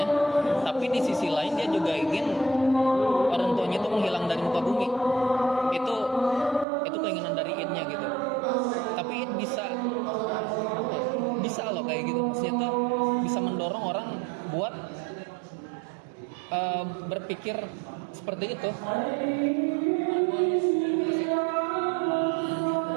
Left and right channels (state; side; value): drops out; left; at 6.7 s